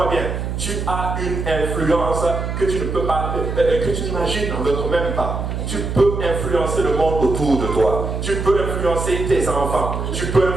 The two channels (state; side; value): noise; right; hum, 3 dB below the sound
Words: bien. Tu as une influence que tu ne peux pas, que tu n'imagines même pas. Tu peux influencer le monde autour de toi. Tu peux influencer tes enfants. Tu peux